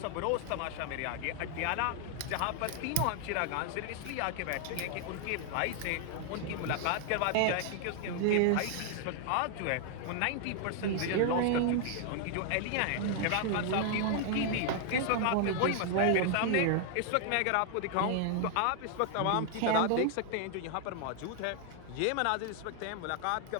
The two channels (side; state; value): both; different; correlation 0.00